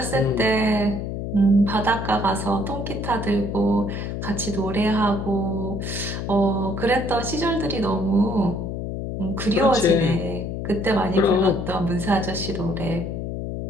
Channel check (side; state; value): left; noise; hum, 4 dB below the sound